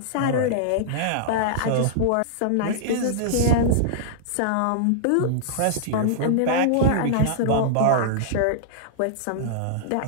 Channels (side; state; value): both; different; correlation -0.02